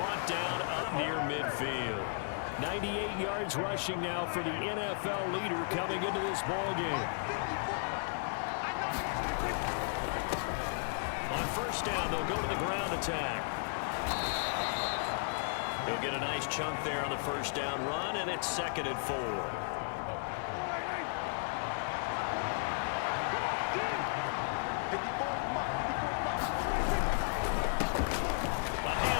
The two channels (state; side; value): silent; right; 55 dB below the other